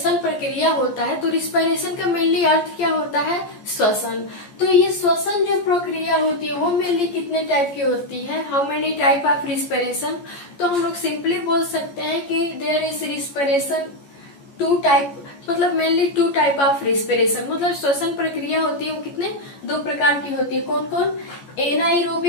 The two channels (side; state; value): right; late; 14 ms